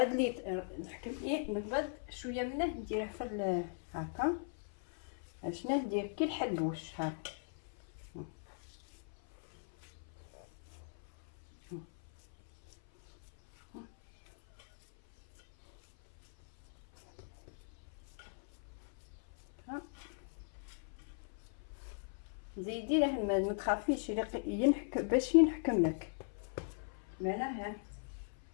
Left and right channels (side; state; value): right; silent; 52 dB below the other